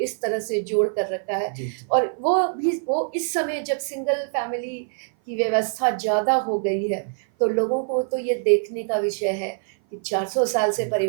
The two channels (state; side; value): silent; left; 56 dB below the other